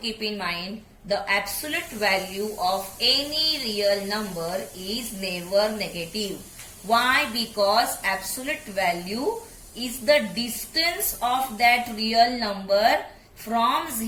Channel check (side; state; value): both; identical; correlation 1.00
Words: in mind the absolute value of any real number is never negative. Why? Because absolute value is the distance of that real number from